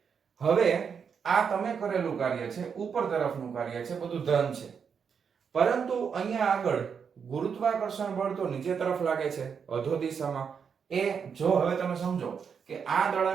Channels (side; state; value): left; quieter; 6.6 dB